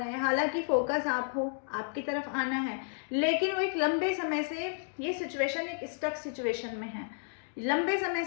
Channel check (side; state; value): right; silent; digital silence